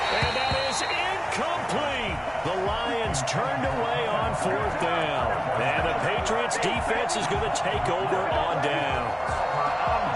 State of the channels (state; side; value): identical; both; correlation 1.00